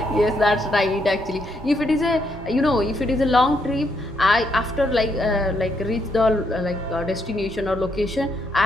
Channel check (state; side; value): normal; both; correlation 0.76